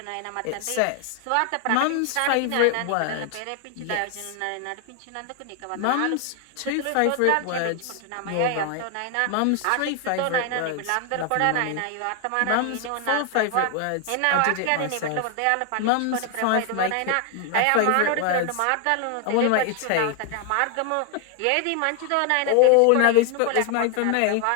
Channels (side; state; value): both; different; correlation 0.00